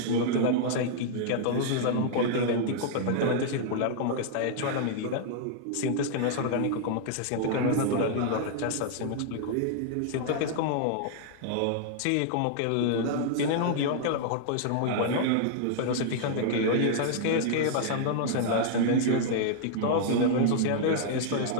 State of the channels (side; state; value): both; different; correlation -0.01